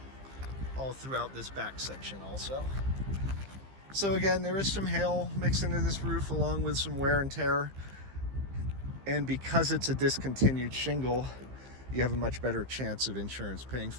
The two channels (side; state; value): left; late; 15 ms